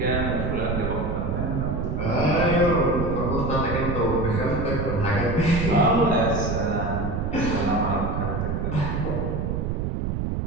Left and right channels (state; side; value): noise; right; rumble, 1 dB below the sound